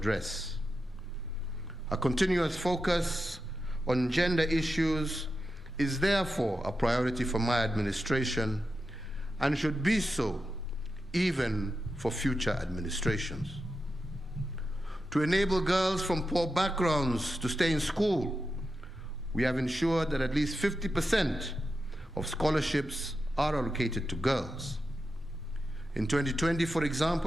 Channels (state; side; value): normal; both; correlation 0.89